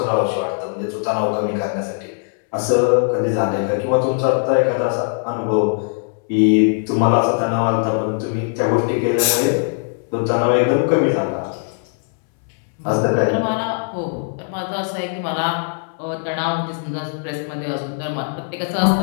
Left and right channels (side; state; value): right; silent; 65 dB below the other